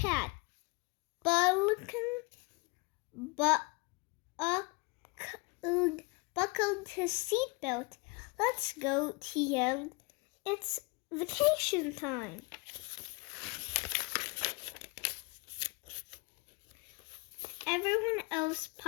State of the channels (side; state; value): right; quieter; 27.7 dB